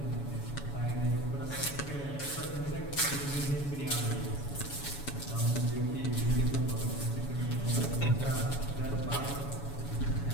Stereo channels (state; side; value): late; right; 7.1 ms